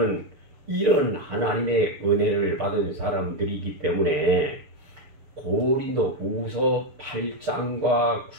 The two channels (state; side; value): late; left; 6.5 ms